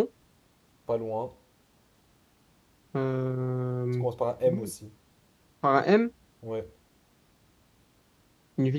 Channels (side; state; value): both; identical; correlation 1.00